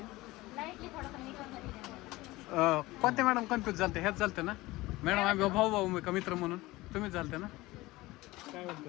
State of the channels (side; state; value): right; quieter; 19.6 dB